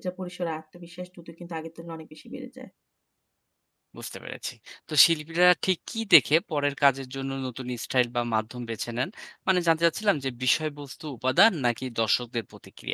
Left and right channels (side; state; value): both; identical; correlation 1.00